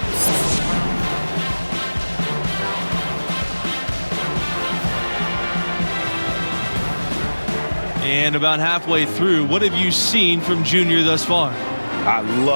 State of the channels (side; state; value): both; inverted; correlation -1.00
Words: And about halfway through, what have you seen from Junior thus far? I